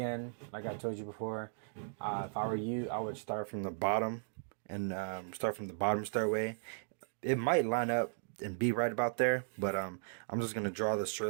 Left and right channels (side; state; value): left; silent; digital silence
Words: like I told you before, if I were you, I would start from the bottom and start from the bottom stairway. It might line up and be right about there, but I'm just gonna draw the